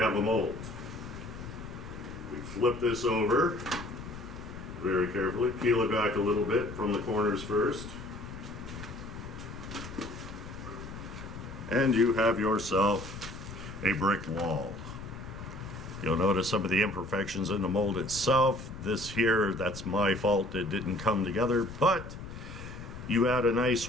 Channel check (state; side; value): noise; left; rumble, 11 dB below the sound